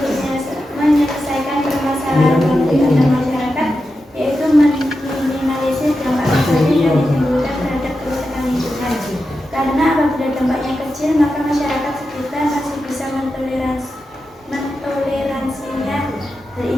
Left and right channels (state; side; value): normal; both; correlation 0.90